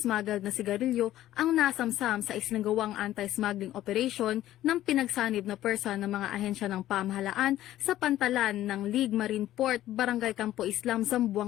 na sigarilyo ang nasamsam sa isinagawang anti-smuggling operation ng pinagsanib na pwersa ng mga ahensya ng pamahalaan sa pantalan ng League Marine Port, Barangay Campo Islam,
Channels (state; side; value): quieter; right; 13.7 dB